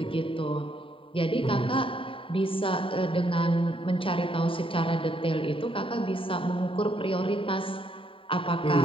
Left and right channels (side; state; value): right; late; 0.25 ms